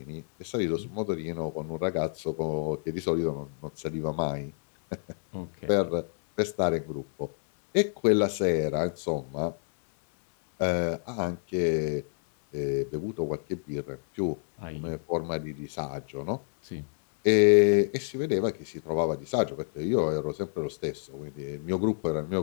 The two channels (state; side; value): silent; right; digital silence